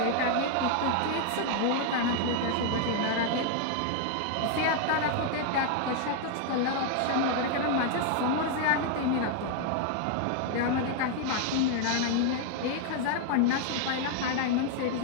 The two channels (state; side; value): different; both; correlation 0.00